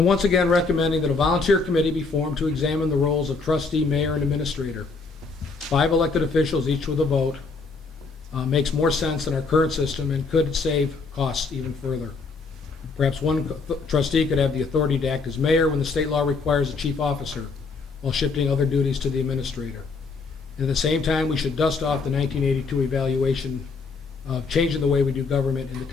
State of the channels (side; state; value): right; quieter; 4.3 dB